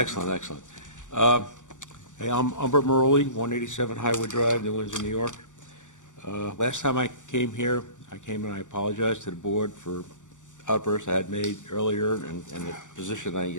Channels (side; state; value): right; late; 0.86 ms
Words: excellent. Hey, I'm Humbert Maroli, 187 Highwood Drive, New Windsor, New York. Last time I came here, I came and I apologized to the board for outbursts I had made earlier and the position